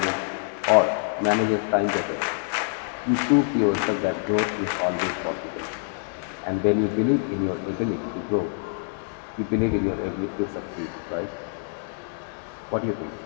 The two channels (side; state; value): right; silent; digital silence